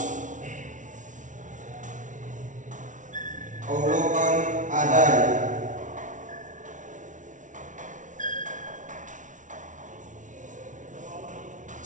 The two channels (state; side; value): late; left; 0.37 ms